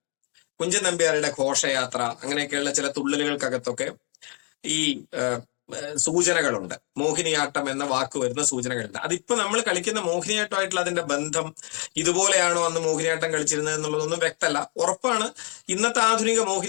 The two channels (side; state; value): right; quieter; 36.9 dB